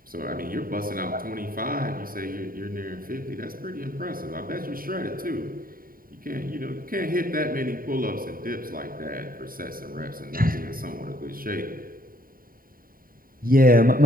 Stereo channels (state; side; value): late; left; 0.41 ms